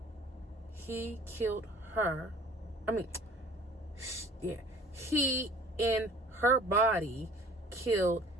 He killed her. He in her body killed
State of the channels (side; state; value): both; normal; correlation 0.50